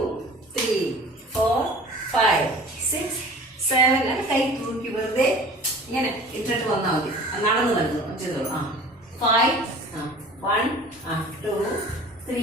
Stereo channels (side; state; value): both; normal; correlation 0.44